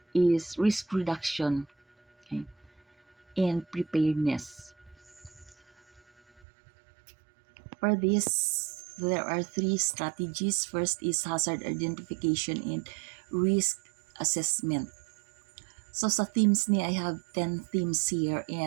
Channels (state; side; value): drops out; left; at 6.4 s